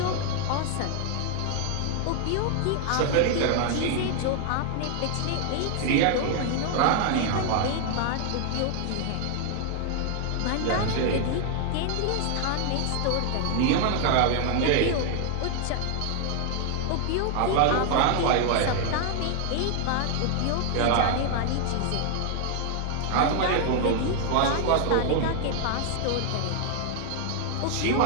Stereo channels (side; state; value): both; different; correlation 0.00